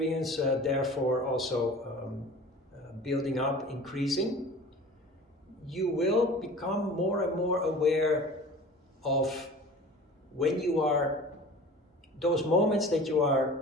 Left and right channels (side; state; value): both; normal; correlation 0.41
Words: therefore also building up, increasing, you will become more and more aware of when you are, those moments that you are